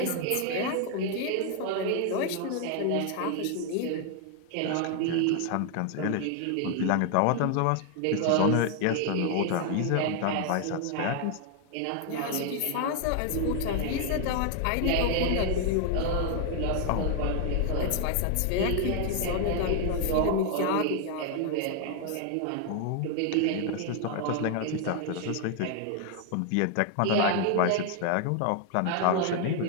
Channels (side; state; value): both; different; correlation 0.00